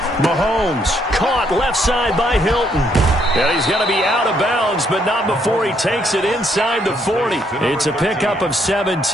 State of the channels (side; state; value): both; normal; correlation 0.71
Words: Mahomes caught left side by Hilton. And he's going to be out of bounds, but not before he takes it inside the 40. It's a pickup of